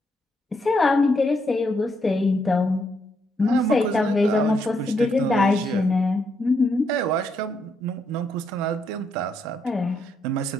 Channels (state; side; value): normal; both; correlation 0.77